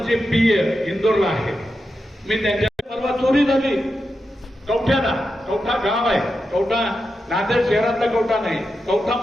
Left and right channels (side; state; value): both; normal; correlation 0.88